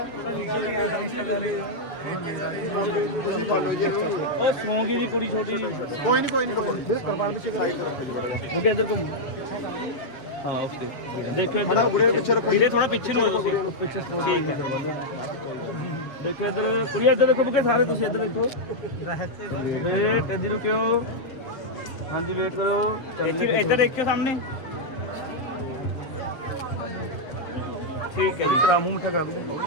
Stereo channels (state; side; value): late; right; 7.3 ms